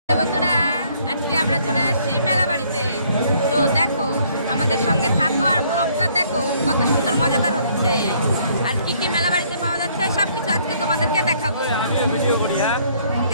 বন্ধুরা, আজকে আমরা চলে আসছি মেলা বাড়িতে। তো দেখো, আমাদের সঙ্গে থাকো আর ব্লগটা দেখো, কত সুন্দর মজাদার হচ্ছে। আর কি কি মেলা বাড়িতে পাওয়া যাচ্ছে সবকিছু আজকে তোমাদেরকে দেখাবো।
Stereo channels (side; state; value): both; inverted; correlation -0.64